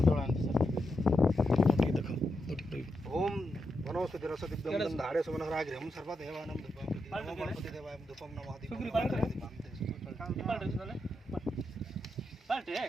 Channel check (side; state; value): both; normal; correlation 0.84